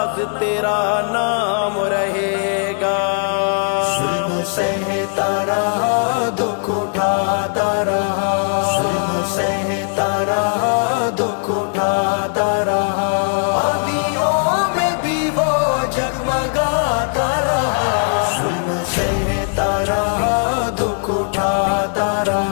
تیرا نام رہے گا۔ ظلم سہتا رہا، دکھ اٹھاتا رہا، ظلم سہتا رہا، دکھ اٹھاتا رہا، آندھیوں میں بھی وہ جگمگاتا رہا، ظلم سہتا رہا، دکھ اٹھاتا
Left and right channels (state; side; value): silent; right; 59 dB below the other